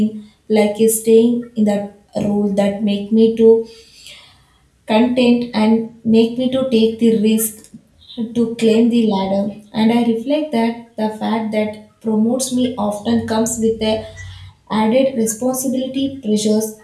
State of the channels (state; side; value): identical; both; correlation 1.00